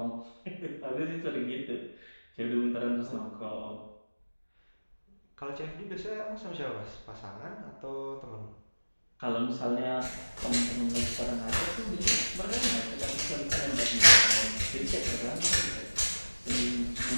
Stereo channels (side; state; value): both; inverted; correlation -1.00